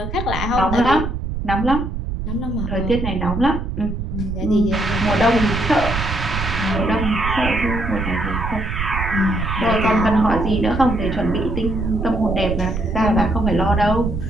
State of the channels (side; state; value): right; noise; rumble, 4 dB below the sound